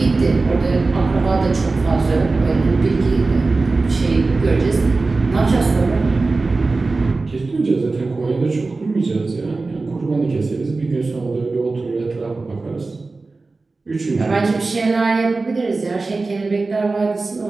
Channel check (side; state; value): left; quieter; 3.6 dB